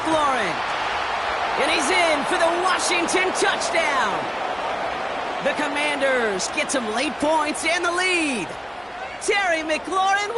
And he's in for the Washington touchdown. The Commanders get some late points and the lead. Terry McLaurin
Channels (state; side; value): identical; both; correlation 1.00